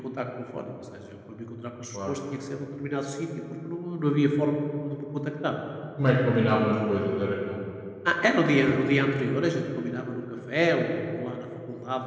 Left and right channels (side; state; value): both; identical; correlation 1.00